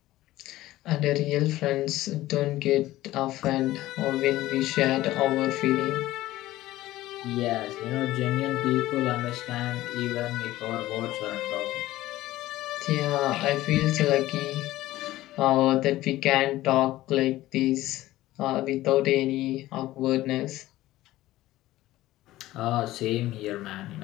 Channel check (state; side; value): quieter; right; 16.2 dB